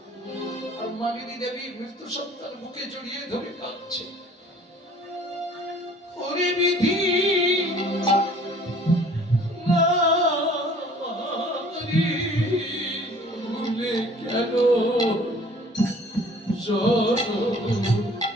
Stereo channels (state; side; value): normal; both; correlation 0.52